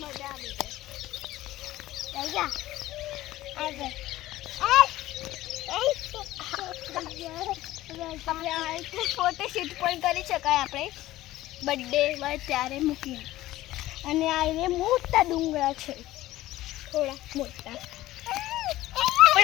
આવી જાય. ફોટોશૂટ પણ કરી શકાય આપણે બર્થડે હોય ત્યારે મૂકીને. અને આ એ મોટા ડુંગરા છે, થોડા મોટા.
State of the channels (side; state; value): right; quieter; 15.8 dB